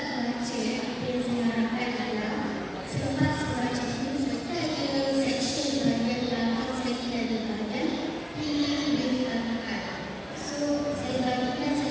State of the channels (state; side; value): identical; both; correlation 1.00